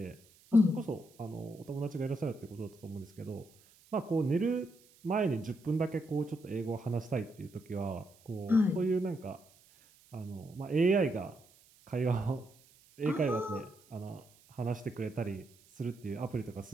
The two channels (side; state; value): right; noise; hiss, 28 dB below the sound